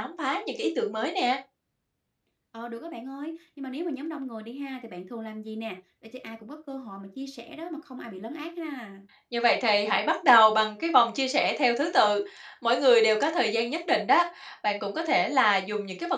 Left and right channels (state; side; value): identical; both; correlation 1.00